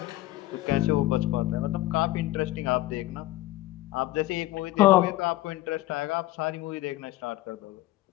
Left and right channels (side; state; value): right; quieter; 16.8 dB